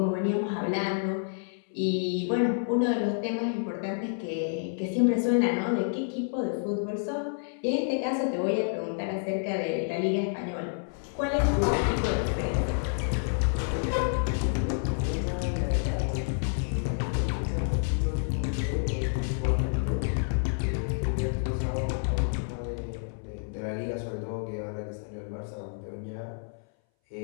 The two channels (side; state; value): right; silent; 59 dB below the other